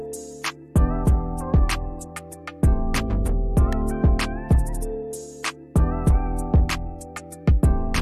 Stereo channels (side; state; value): both; identical; correlation 1.00